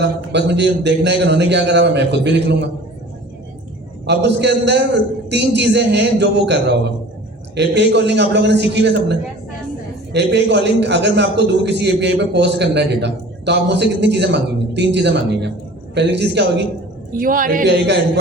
बस मुझे देखना है कि उन्होंने क्या करा, मैं खुद भी लिख लूँगा। अब उसके अंदर 3 चीज़ें हैं जो वो कर रहा होगा। API कॉलिंग आप लोगों ने सीखी है सबने। API कॉलिंग, अगर मैं आपको दूँ किसी API पे पोस्ट करना है डेटा, तो आप मुझसे कितनी चीज़ें मांगेंगे? 3 चीज़ें मांगेंगे। पहली चीज़ क्या होगी? URL। API का एंड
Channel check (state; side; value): normal; both; correlation 0.44